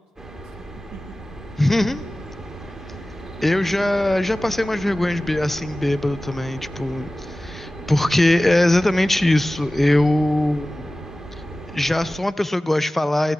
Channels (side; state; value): both; normal; correlation 0.97